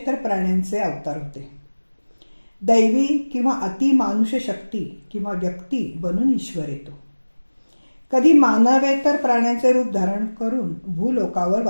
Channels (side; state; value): both; inverted; correlation -1.00